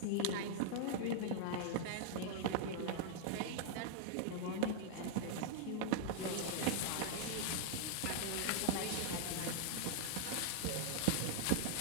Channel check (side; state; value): both; different; correlation -0.01